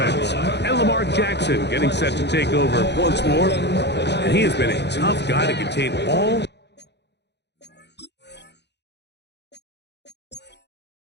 And Lamar Jackson getting set to take over once more. And he has been a tough guy to contain all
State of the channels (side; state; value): right; late; 0.50 ms